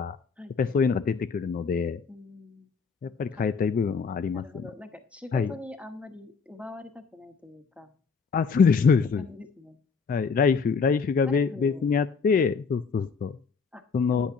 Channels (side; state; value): right; quieter; 5.3 dB